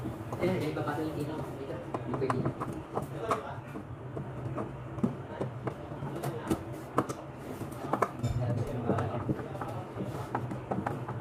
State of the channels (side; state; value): both; identical; correlation 1.00